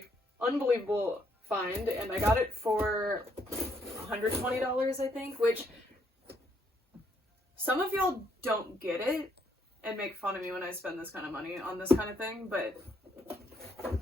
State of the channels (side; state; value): both; normal; correlation 0.71